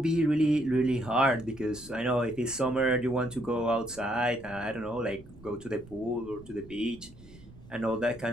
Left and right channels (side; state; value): right; noise; rumble, 20 dB below the sound